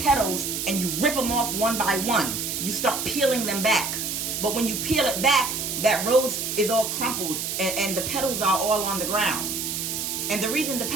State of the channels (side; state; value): right; noise; hiss, 3 dB below the sound